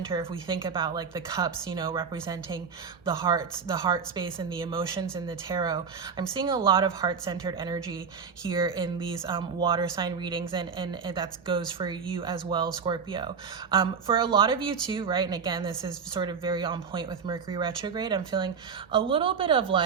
If we think about like the cups, you know, representing the hearts, the heart space and the emotions in the tarot, I'm seeing a lot of heart-centered energy here in these water sign readings, and that goes for you as well, Scorpio. For a lot of you too, right? And again, this is sort of very on point with Mercury retrograde. I'm feeling a little bit of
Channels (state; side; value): quieter; left; 6.0 dB